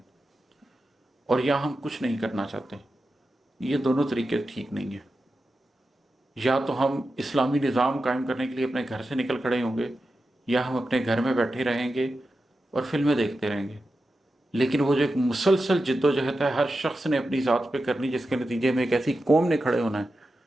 और या हम कुछ नहीं करना चाहते। ये दोनों तरीके ठीक नहीं है। या तो हम इस्लामी निज़ाम कायम करने के लिए अपने घर से निकल खड़े होंगे, या हम अपने घर में बैठे रहेंगे और फिल्में देखते रहेंगे। लेकिन वो जो एक मुसलसल जिद्दोजहद है हर शख्स ने अपनी ज़ात पे करनी, जिसके नतीजे में एक ऐसी कौम ने खड़े होना है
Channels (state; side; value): normal; both; correlation 0.91